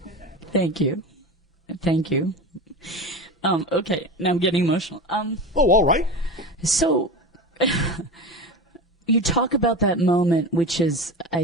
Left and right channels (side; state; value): both; normal; correlation 0.27